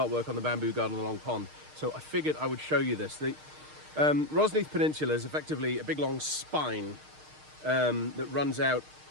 work on the bamboo garden along pond. So I figured I would show you this. The Rosneath Peninsula is effectively a big long spine that runs out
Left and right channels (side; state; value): left; late; 6.5 ms